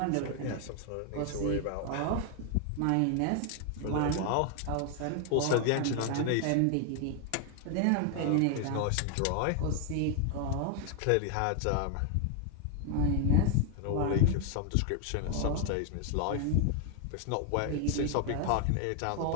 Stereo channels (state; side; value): different; both; correlation 0.00